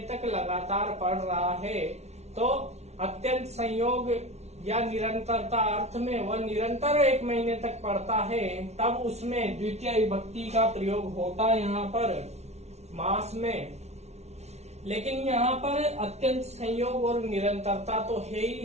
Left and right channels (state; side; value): late; left; 0.31 ms